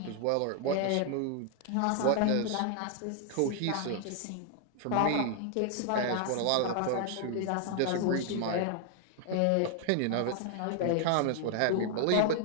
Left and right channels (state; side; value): different; both; correlation 0.00